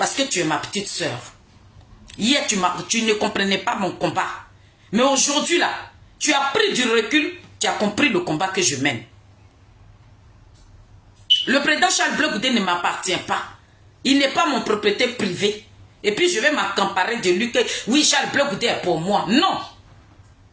que tu es ma petite soeur. Hier, tu ne comprenais pas mon combat. Mais aujourd'hui, là, tu as pris du recul, tu as compris le combat que je mène. Le président Charles Blé Goudé ne m'appartient pas. Il n'est pas mon propriété privée. Et puis je vais m'accaparer de lui que oui, Charles Blé Goudé est pour moi. Non.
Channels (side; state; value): both; identical; correlation 1.00